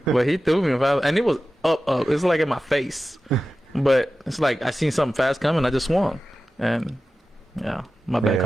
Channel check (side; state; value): both; normal; correlation 0.94